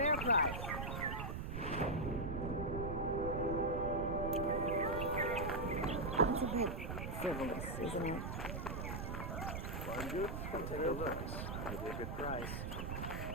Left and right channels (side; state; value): right; noise; rumble, 4 dB below the sound